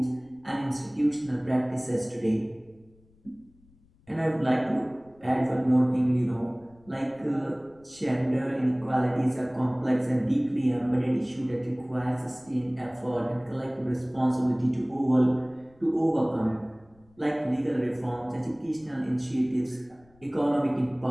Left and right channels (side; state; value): left; noise; rumble, 30 dB below the sound